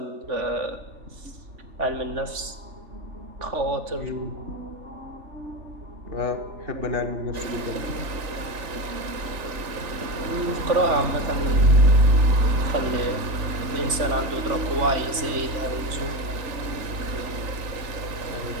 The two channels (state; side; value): late; left; 3.4 ms